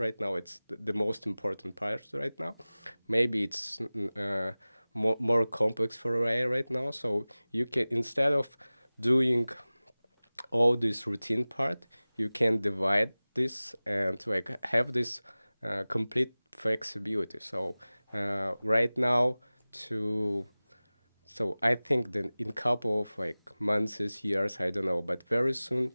now it's the most important part right now. Maybe it's more complex for AI right now. So you can instead of doing all this routine part, you can divide this and like have this complete flexibility. So right now to so I think that in couple of like months, years, I don't know, but very soon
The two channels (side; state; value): both; inverted; correlation -0.98